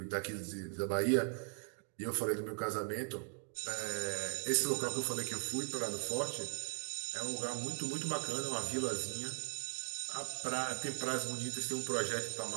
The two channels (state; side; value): silent; left; 52 dB below the other